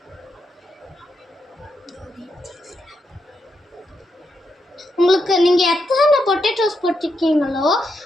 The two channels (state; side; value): normal; both; correlation 0.82